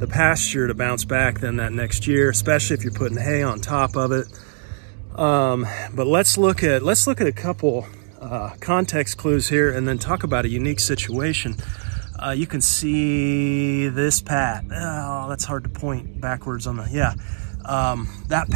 pasture to bounce back than that next year, especially if you're putting hay on top of it. But let's look at a couple context clues here, and then talk about a unique situation. You can see this pat. Oh, that's hard to point backwards on the, yeah. That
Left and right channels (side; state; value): left; silent; digital silence